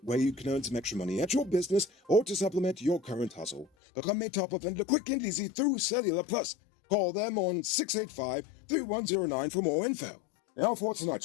way you can earn some extra money at your business or to supplement your current hustle. Become a top-up vendor quick and easy through Cellular Plus. Call them on 685-3109 for more info. Now for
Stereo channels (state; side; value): drops out; right; at 3.7 s